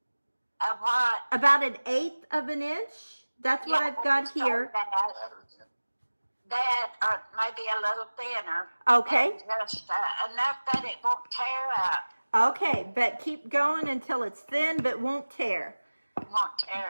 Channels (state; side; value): inverted; both; correlation -1.00